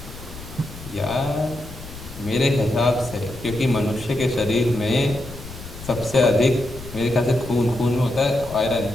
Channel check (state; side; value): noise; left; rumble, 14 dB below the sound